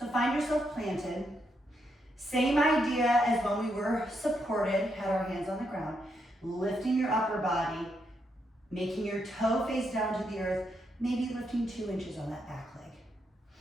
find yourself planted. Same idea as when we were supported, had our hands on the ground, lifting your upper body, making your toe face down to the earth, maybe lifting 2 inches on that back leg.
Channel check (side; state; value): both; normal; correlation 0.79